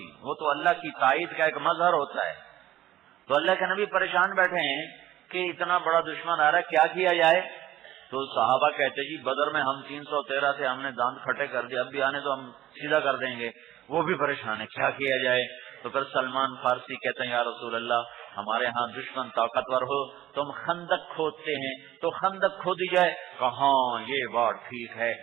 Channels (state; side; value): quieter; left; 13.8 dB